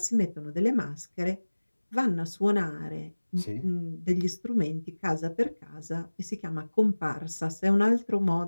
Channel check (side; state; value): both; inverted; correlation -1.00